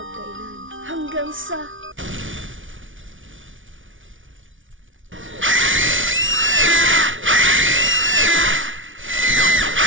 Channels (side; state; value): left; late; 0.57 ms